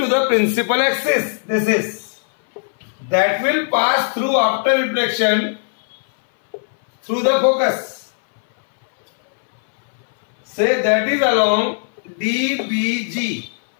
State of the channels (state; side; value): silent; right; 61 dB below the other